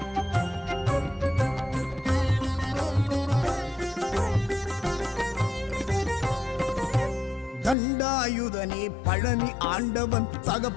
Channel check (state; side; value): drops out; right; at 7.8 s